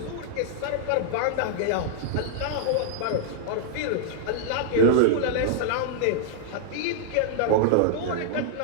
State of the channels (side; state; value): both; different; correlation -0.01